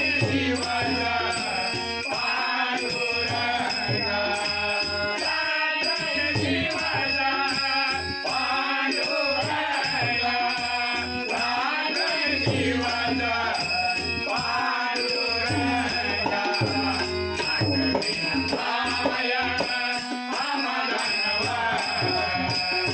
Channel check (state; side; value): identical; both; correlation 1.00